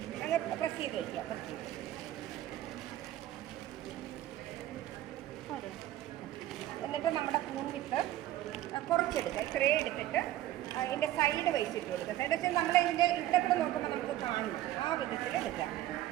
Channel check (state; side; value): quieter; left; 14.1 dB